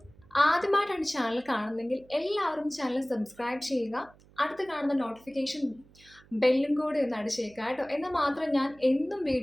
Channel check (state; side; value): noise; right; hum, 27 dB below the sound